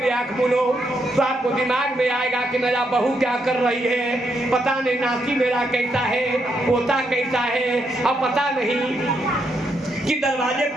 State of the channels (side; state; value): both; normal; correlation 0.79